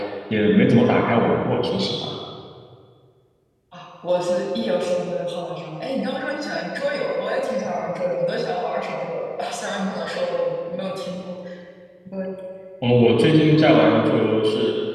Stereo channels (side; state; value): both; identical; correlation 1.00